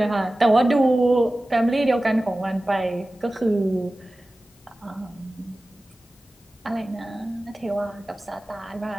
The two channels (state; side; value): normal; both; correlation 0.96